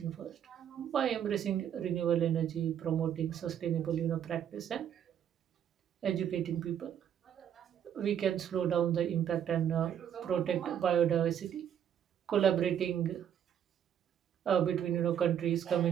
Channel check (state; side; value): quieter; left; 9.3 dB